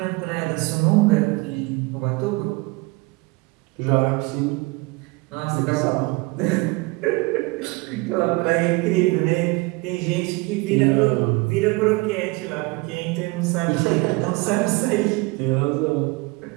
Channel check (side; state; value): left; quieter; 25.4 dB